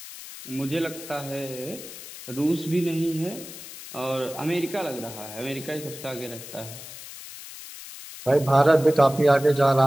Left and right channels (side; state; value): left; noise; hiss, 14 dB below the sound